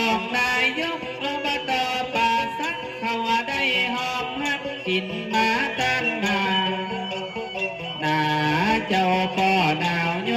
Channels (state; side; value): identical; both; correlation 1.00